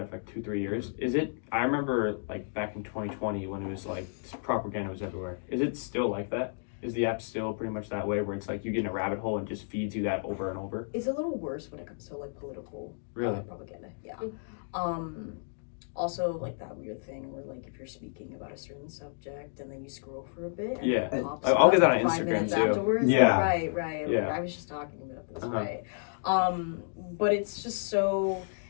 for like 2-3 years. I remember like back in 2020 when it was like propaganda was everywhere. Is it still like that? Is the app still pretty much that way where it's like you get in a rabbit hole and just feeds you that over and over? It's a little worse when it comes to like political propaganda. Yeah. Also like that weird thing where like if you're speaking about a certain subject and then you scroll for a bit and it pops I'll get that up on 5 Instagram minutes too. afterwards. Yeah. Right. Yeah. Like, I was just talking about this, right? But it's just so,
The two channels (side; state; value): right; silent; digital silence